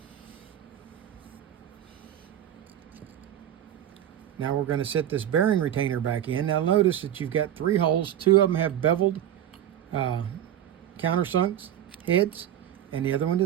Now we're going to set this bearing retainer back in. Now notice that you've got 3 holes. 2 of them have beveled countersunk heads, and the other one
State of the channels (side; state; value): left; quieter; 11.0 dB